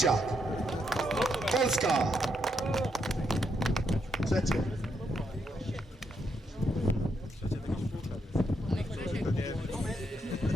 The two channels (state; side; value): normal; both; correlation 0.78